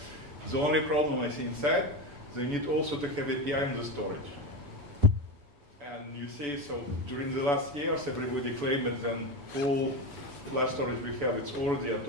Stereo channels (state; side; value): late; left; 7.0 ms